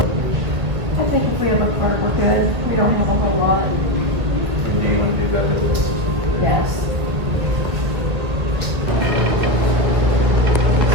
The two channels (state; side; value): late; left; 1.6 ms